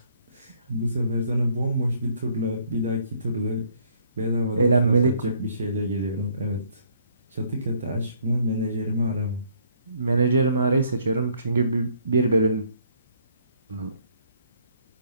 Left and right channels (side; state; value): both; inverted; correlation -0.64